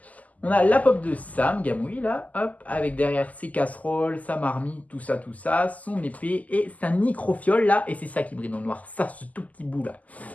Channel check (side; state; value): right; late; 0.076 ms